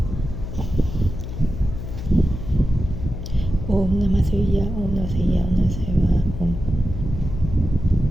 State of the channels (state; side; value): noise; left; hum, 7 dB below the sound